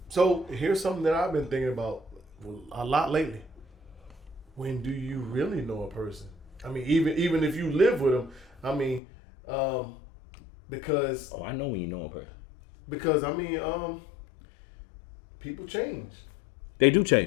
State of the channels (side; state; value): right; drops out; at 9.0 s